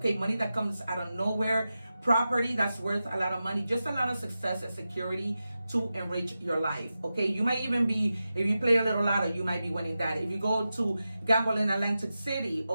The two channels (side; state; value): both; inverted; correlation -0.92